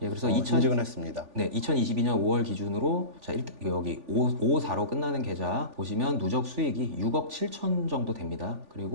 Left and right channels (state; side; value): late; left; 3.4 ms